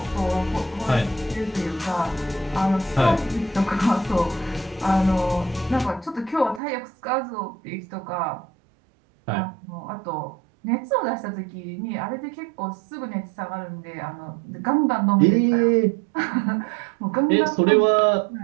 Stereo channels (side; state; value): left; drops out; at 6.6 s